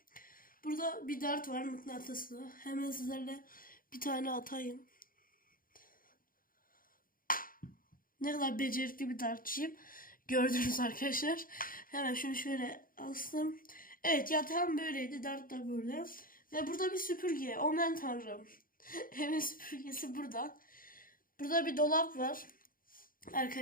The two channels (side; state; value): right; late; 0.41 ms